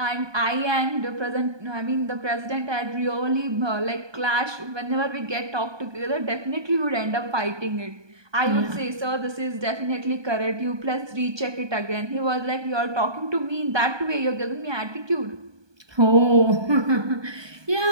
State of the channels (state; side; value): late; left; 1.2 ms